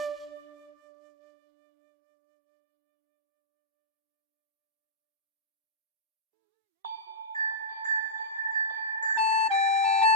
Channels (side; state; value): both; normal; correlation -0.12